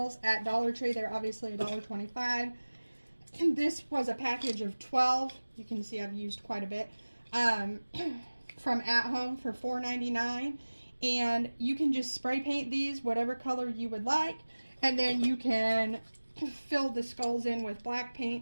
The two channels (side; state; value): both; inverted; correlation -1.00